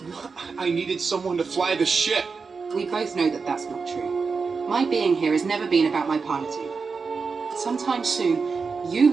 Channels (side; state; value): left; quieter; 4.9 dB